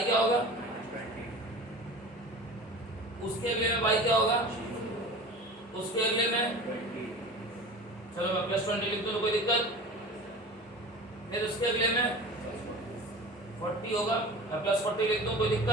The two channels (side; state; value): both; normal; correlation 0.37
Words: क्या होगा, उसके अगले में वाई क्या होगा, उसके अगले में, चलो मैं +20 लिख दूं तो कोई दिक्कत, फिर उसके अगले में 40 होगा, मैं +40 लिख दूं कोई